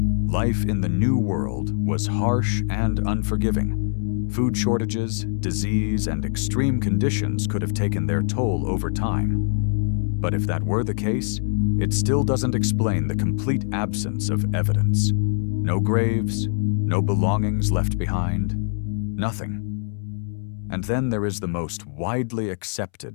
Life in the New World was harsh and unforgiving. Food shortages, disease, and extreme conditions could have taken their toll over time. But if that were the case, it still doesn't explain the complete absence of evidence. No graves, no belongings left behind, nothing. And then there is the most widely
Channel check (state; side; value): silent; right; 63 dB below the other